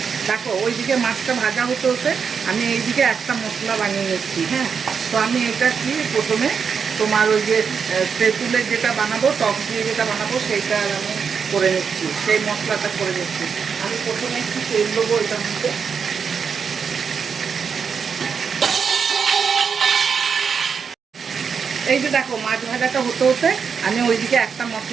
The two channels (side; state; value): left; quieter; 6.3 dB